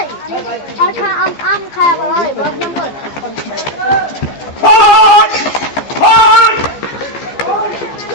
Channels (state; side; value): late; right; 15 ms